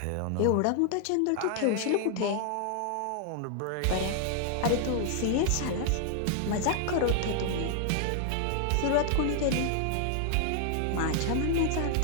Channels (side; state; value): both; different; correlation 0.00